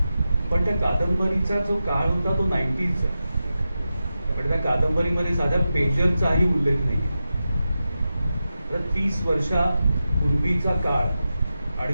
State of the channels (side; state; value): both; inverted; correlation -0.91